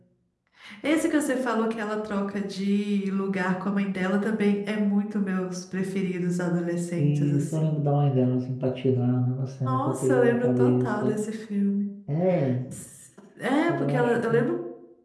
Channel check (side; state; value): both; identical; correlation 1.00